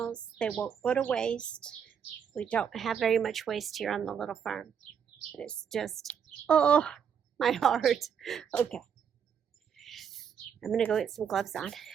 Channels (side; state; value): left; quieter; 7.7 dB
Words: They won't go to waste. We don't have very much waste here on the little farm. It's just, oh, my heart. Okay. I'm going to go get some gloves on.